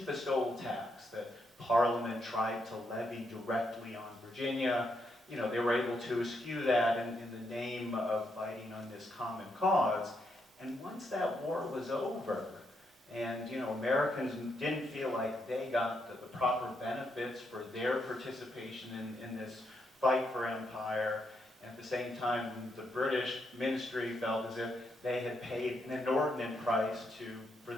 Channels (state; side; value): normal; both; correlation 0.79